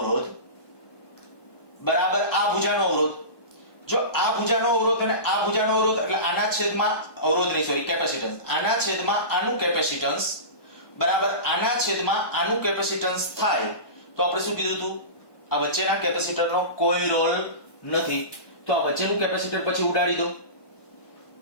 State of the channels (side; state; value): right; late; 1.2 ms